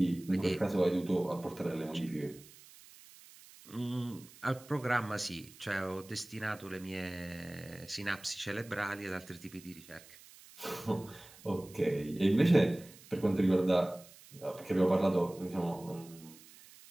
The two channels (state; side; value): noise; right; hiss, 21 dB below the sound